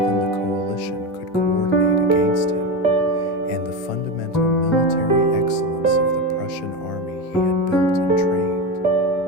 the coalition could coordinate against him, and the fundamental military excellence of the Prussian army he had built and trained.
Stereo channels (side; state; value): both; normal; correlation 0.17